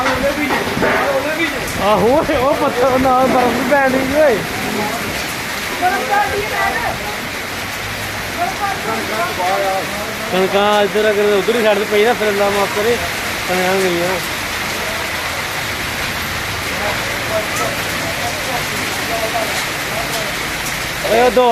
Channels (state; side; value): identical; both; correlation 1.00